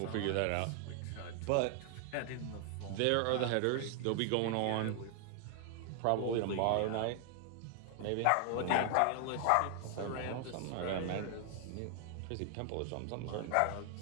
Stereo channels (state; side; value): different; both; correlation 0.00